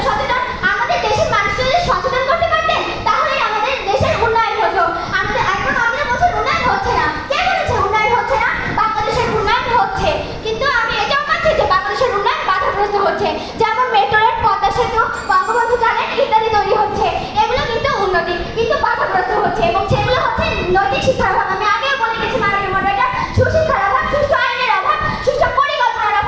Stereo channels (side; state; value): both; identical; correlation 1.00